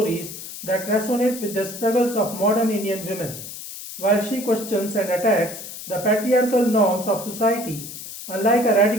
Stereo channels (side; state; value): left; noise; hiss, 11 dB below the sound